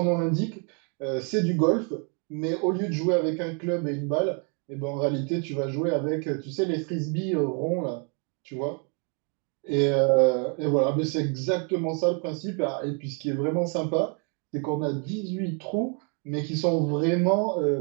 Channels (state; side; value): quieter; left; 38.2 dB